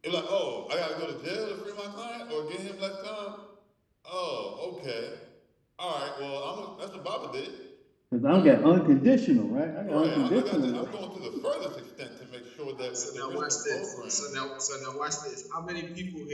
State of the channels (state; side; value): identical; both; correlation 1.00